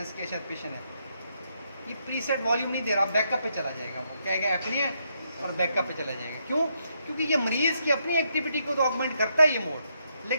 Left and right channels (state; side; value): inverted; both; correlation -0.77